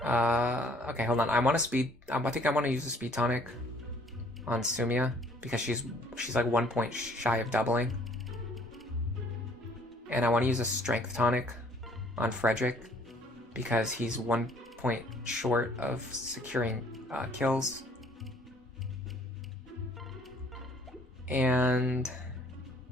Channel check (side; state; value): both; normal; correlation 0.59